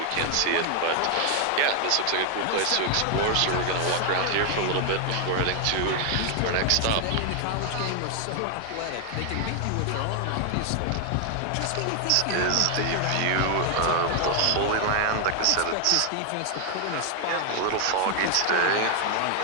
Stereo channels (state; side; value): different; both; correlation 0.00